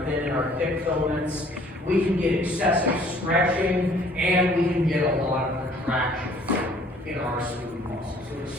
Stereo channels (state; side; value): normal; both; correlation 0.57